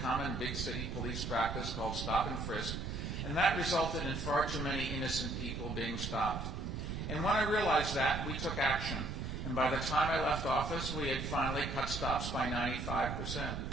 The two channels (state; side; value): noise; right; rumble, 4 dB below the sound